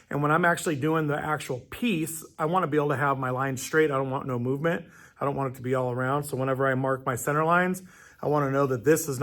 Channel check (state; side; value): identical; both; correlation 1.00